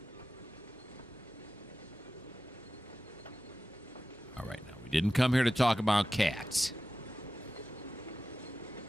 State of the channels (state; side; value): normal; both; correlation 0.93